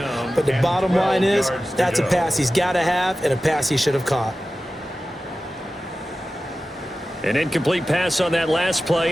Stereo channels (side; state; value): both; normal; correlation 0.95